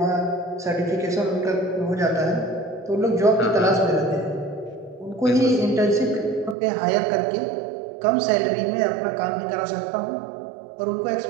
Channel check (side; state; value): left; drops out; at 6.6 s